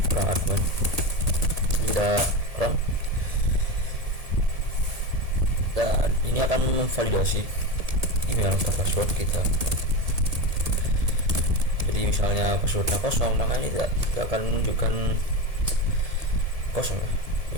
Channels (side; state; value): left; late; 1.8 ms